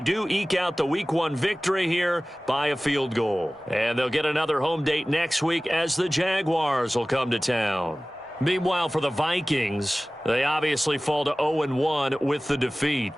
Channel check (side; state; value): both; normal; correlation 0.98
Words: eke out the Week 1 victory here by a field goal. And they'll get another home date next week as the Jaguars will come to town. Meanwhile, for the Vikings, they obviously fall to 0-1 with the defeat.